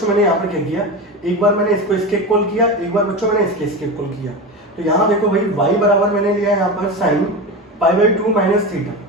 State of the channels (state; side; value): normal; both; correlation 0.22